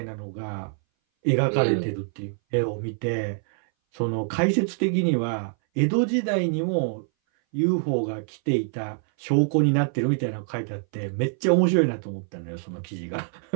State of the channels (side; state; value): left; silent; 59 dB below the other